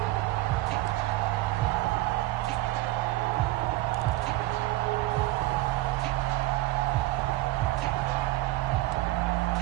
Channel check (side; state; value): left; quieter; 17.7 dB